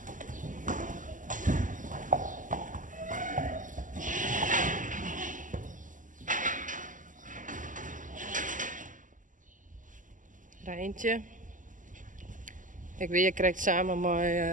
Rijntje. Ik weet, je krijgt samen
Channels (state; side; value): late; left; 0.38 ms